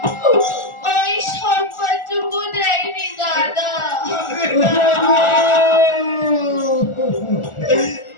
ওই সম্মানটুকু দেয়নি দাদা।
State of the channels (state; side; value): late; right; 1.4 ms